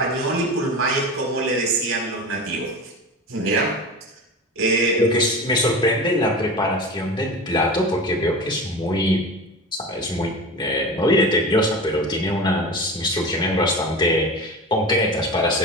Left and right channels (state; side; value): normal; both; correlation 0.31